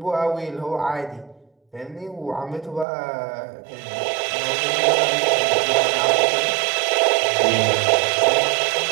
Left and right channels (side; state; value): left; drops out; at 2.9 s